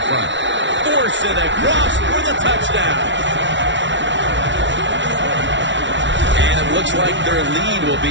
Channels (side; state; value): left; late; 0.54 ms